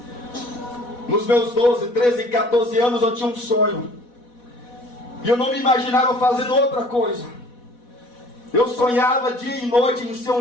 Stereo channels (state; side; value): late; right; 4.1 ms